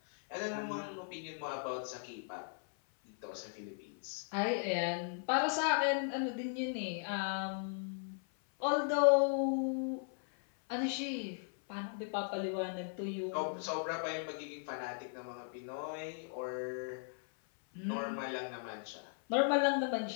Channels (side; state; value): right; silent; 53 dB below the other